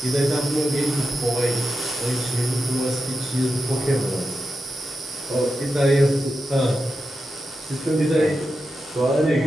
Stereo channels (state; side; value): normal; both; correlation 0.89